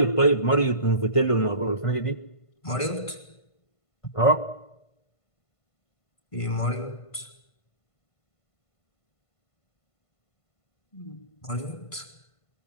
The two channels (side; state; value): right; late; 1.5 ms